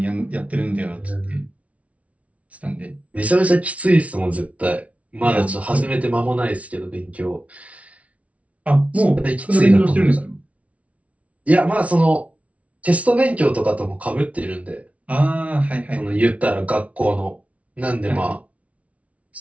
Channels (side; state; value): left; late; 0.065 ms